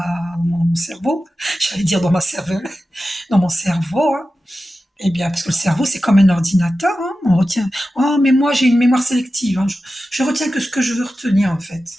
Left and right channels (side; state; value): both; normal; correlation 0.93